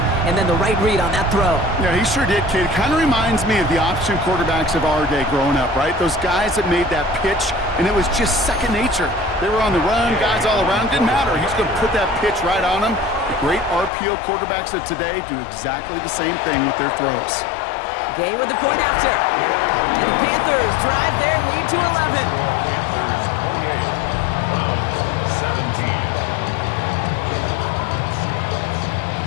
and then the right read on that throw. Yeah, he sure did, kid. It kind of reminds me of the option quarterbacks of our day growing up, right? Those guys that made that pitch, and it was just second nature. They were on the run, guys all around. Didn't matter. He's going to put that pitch right on them. The great RPO quarterbacks of today do exactly the same thing with their throws. Gay with the point after. And the Panthers drive their lead to 11. Panthers 28, Browns 17.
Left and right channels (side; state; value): right; drops out; at 13.9 s